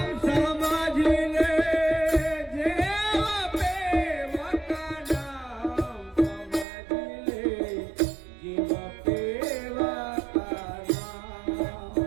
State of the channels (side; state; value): left; drops out; at 6.7 s